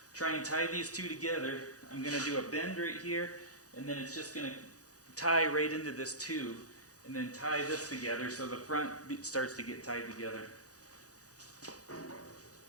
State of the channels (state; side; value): late; right; 0.67 ms